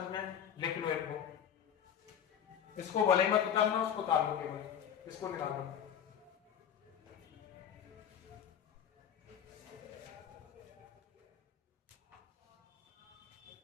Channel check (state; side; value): quieter; right; 8.9 dB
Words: में, लिख लो इनको, इसको भले मत उतारना, उसको उतार लो, केवल इसको निकाल दो।